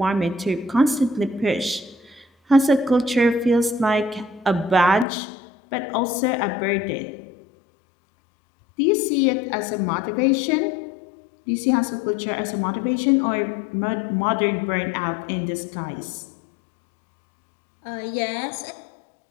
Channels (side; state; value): right; drops out; at 5.1 s